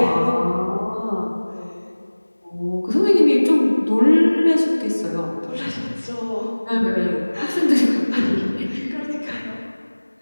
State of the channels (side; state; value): both; inverted; correlation -1.00